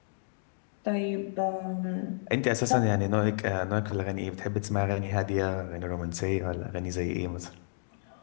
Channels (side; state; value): right; silent; digital silence